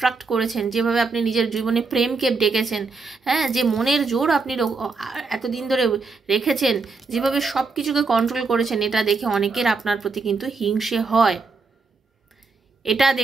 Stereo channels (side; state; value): left; quieter; 4.3 dB